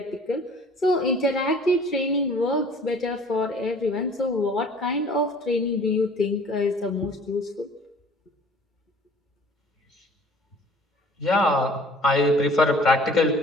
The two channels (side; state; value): both; normal; correlation 0.51